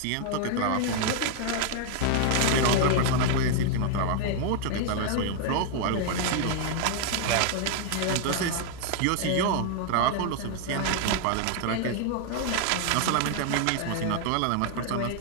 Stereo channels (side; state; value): both; different; correlation 0.00